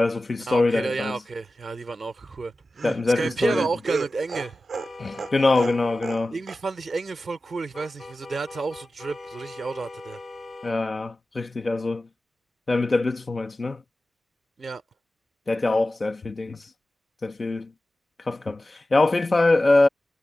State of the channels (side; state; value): both; normal; correlation 0.95